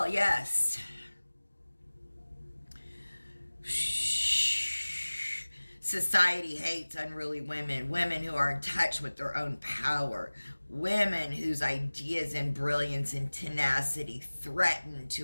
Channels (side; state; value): both; inverted; correlation -1.00